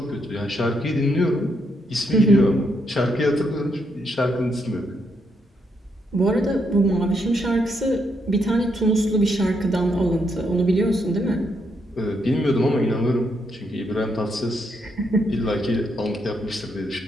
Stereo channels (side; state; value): both; normal; correlation 0.77